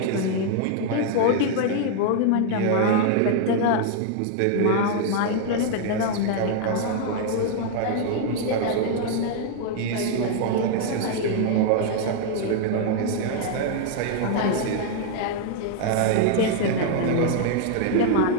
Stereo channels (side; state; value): both; different; correlation 0.00